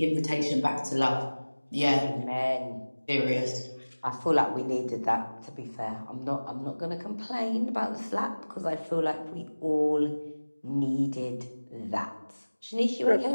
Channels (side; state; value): both; inverted; correlation -1.00